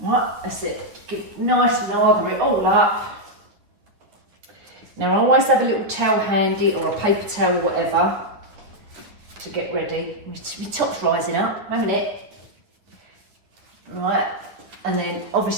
that's it. Get nice and lather it all up. Now I always have a little towel handy or a paper towel or whatever to get ready. My top's rising up, a minute. Right, and then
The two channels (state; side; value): late; left; 9.6 ms